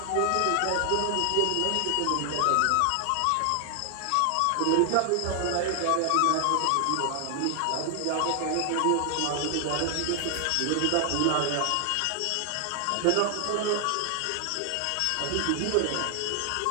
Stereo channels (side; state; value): both; different; correlation 0.00